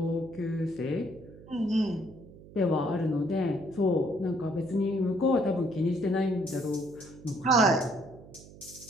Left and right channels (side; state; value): right; noise; hum, 19 dB below the sound